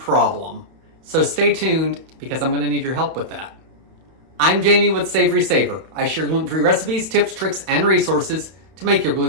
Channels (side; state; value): left; late; 31 ms